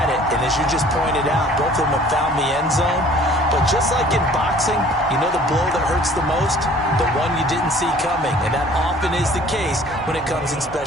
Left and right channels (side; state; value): both; normal; correlation 0.52